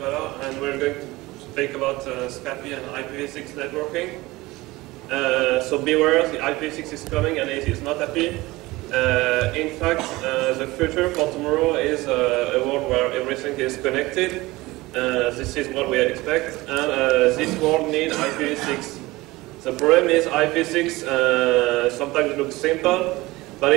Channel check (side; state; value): left; quieter; 20.3 dB